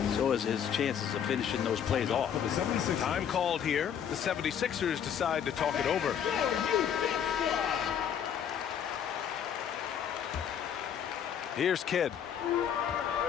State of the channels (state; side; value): quieter; right; 8.6 dB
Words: so is his chances of finishing those plays off. Time called here. The 76ers decide to talk it over. Here's Kidd.